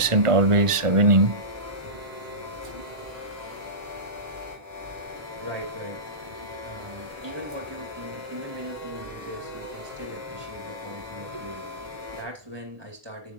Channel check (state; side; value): late; left; 1.5 ms